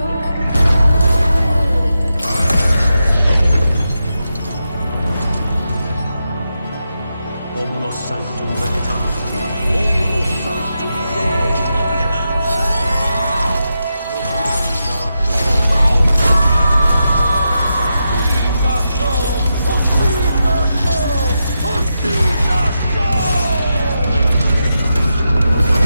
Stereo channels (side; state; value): both; inverted; correlation -0.87